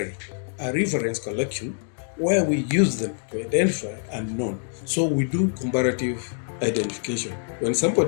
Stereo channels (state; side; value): silent; right; digital silence